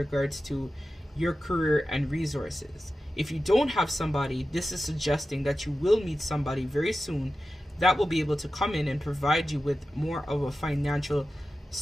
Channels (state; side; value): normal; both; correlation 0.93